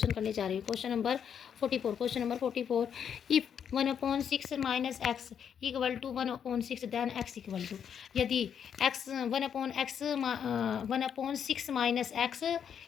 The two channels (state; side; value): quieter; right; 8.0 dB